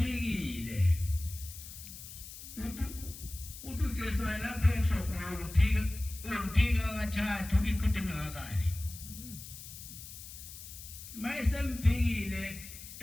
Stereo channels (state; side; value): noise; left; hiss, 13 dB below the sound